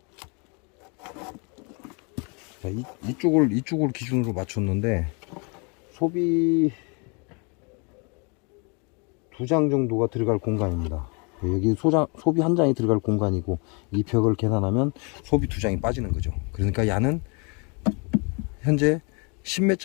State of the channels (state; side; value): quieter; right; 33.1 dB